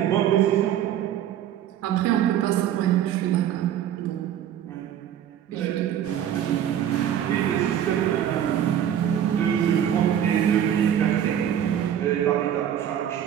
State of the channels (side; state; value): left; quieter; 10.2 dB